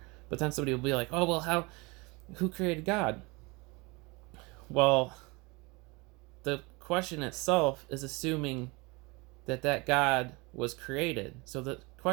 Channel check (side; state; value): left; quieter; 26.3 dB